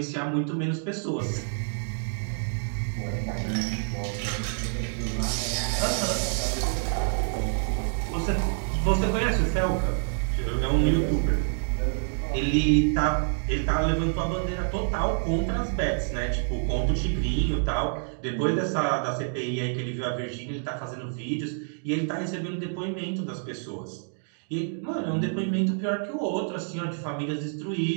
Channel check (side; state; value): left; silent; digital silence